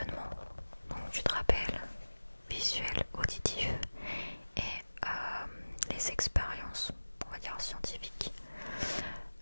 Donc tu te rappelles, visuel, auditif et les expériences, on va dire scientifiques.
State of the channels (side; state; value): both; inverted; correlation -1.00